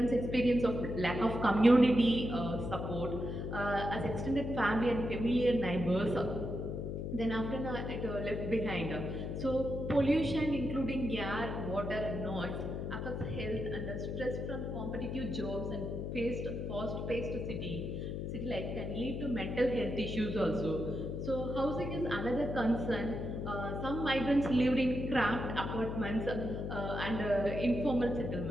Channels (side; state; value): left; noise; hum, 4 dB below the sound